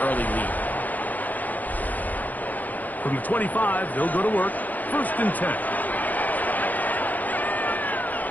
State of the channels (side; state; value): right; late; 0.082 ms